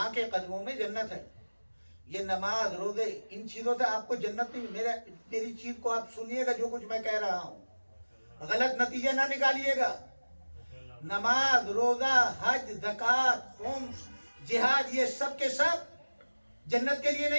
کے قدموں میں جنت ہے. یہ نماز روزے ان چیزوں سے آپ کو جنت نہیں. میری چیز کو آپ سنیے گا، جو کچھ میں کہہ رہا ہوں غلط نتیجہ نہ نکالیے گا. نماز روزہ حج زکوٰۃ خمس جہاد یہ سب کے سب جنت کے لیے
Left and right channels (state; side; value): inverted; both; correlation -1.00